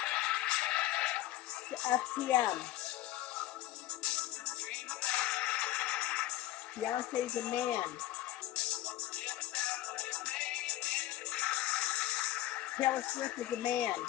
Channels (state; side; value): quieter; right; 15.1 dB